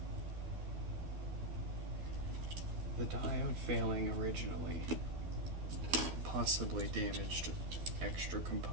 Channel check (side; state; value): left; late; 12 ms